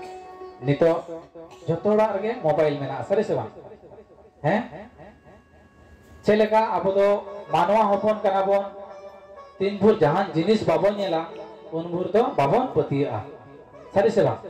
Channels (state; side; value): identical; both; correlation 1.00